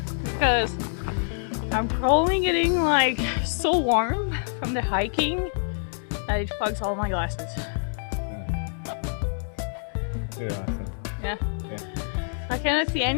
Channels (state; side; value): silent; right; digital silence